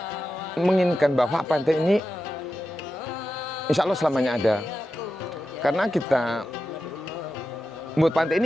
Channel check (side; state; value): both; normal; correlation 0.91